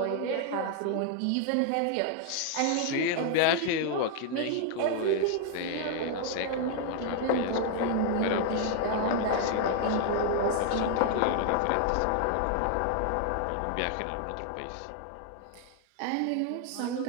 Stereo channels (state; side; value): different; both; correlation 0.00